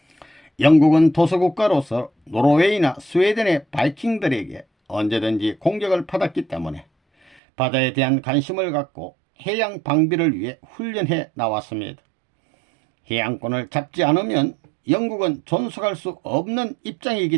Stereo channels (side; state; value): left; drops out; at 7.4 s